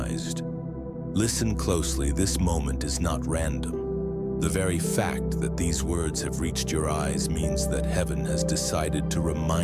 Listen closely, this moment is not random. The very fact that these words have reached your eyes means that heaven has decided to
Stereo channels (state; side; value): identical; both; correlation 1.00